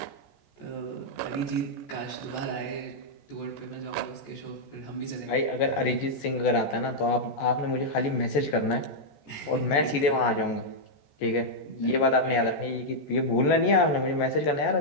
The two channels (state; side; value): late; right; 14 ms